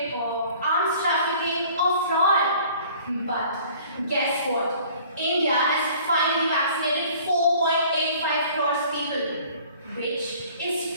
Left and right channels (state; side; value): inverted; both; correlation -0.51